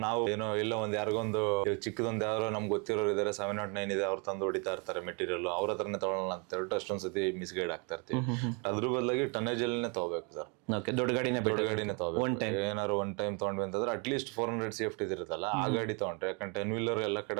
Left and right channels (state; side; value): quieter; left; 33.8 dB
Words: ನಾವು ಏನೋ ಇಲ್ಲ ಒಂದ್ ಯಾರಿಗೊಂದು ಚಿಕ್ಕದೊಂದು ಯಾರೋ ನಮ್ಗೆ ಗೊತ್ತಿರೋರು ಇದಾರೆ 709 ಇದೆ, ಅವ್ರು ತಂದು ಹೊಡಿತಾ ಇರ್ತಾರೆ ಮೆಟೀರಿಯಲ್, ಅವ್ರ ಹತ್ರನೇ ತಗೊಳ್ಳೋಣ ಅಂತ ಹೇಳ್ಬಿಟ್ಟು ಅಷ್ಟೊಂದ್ ಸತಿ ಮಿಸ್ಗೈಡ್ ಆಗ್ತಾ ಇರ್ತೀವಿ. ಅದ್ರ ಬದಲಾಗಿ ಟನ್ನೇಜ್ ಅಲ್ಲೇ ತಗೋಬೇಕು ಸರ್. ದೊಡ್ಡ ಗಾಡಿನೇ ತಗೋಬೇಕು. ಏನಾದ್ರು ಒನ್ ಟೈಮ್ ತಗೊಂಡ್ವಿ ಅಂತಂದ್ರೆ ಅಟ್ಲೀಸ್ಟ್ 400 ಸೇಫ್ಟಿ ಇರುತ್ತಲ್ಲ ಆ ಗಾಡಿ ತಗೊಂಡ್ರೆ, ಯಾಕಂದ್ರೆ 10 ವೀಲರ್ ಎಲ್ಲ